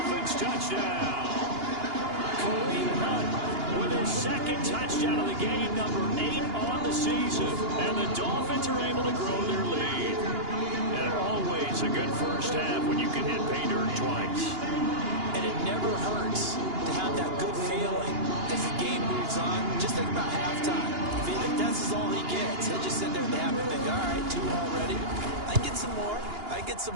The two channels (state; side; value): late; left; 2.9 ms